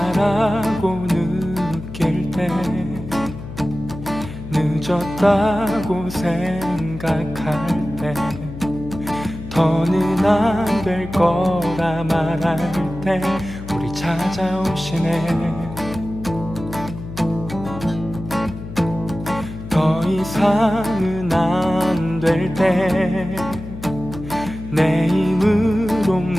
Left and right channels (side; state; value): left; noise; hum, 11 dB below the sound